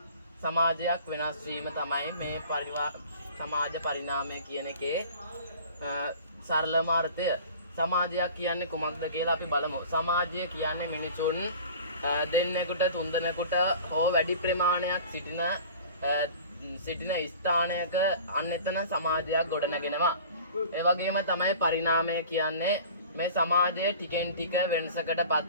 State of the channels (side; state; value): both; inverted; correlation -0.43